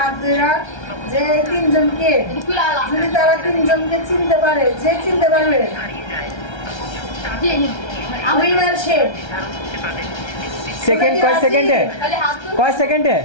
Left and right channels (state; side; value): late; right; 1.3 ms